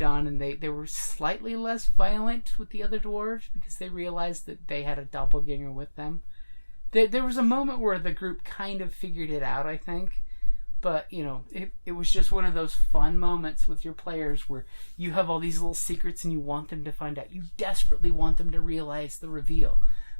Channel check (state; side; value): inverted; both; correlation -1.00